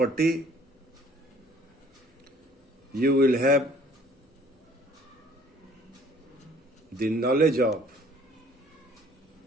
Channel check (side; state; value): both; normal; correlation 0.56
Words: you will have the knowledge of